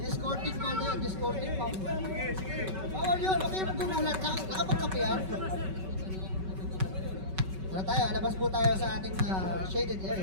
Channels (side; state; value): left; late; 5.3 ms